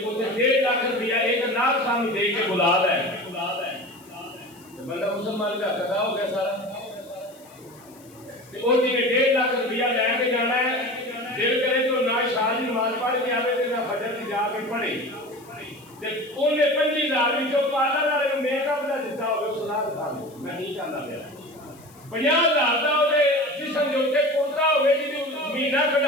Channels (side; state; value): left; noise; hiss, 26 dB below the sound